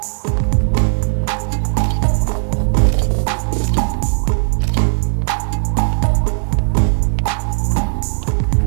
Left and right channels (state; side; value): silent; left; 62 dB below the other